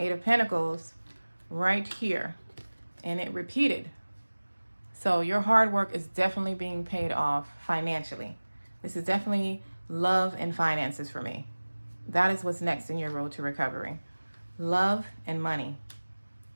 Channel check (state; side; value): inverted; both; correlation -1.00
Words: of Pentacles right here, and it repeated. So your hard work is definitely being paid off financially. This is definitely love and finances for me. That is what's next in your road to recovery. Love and money.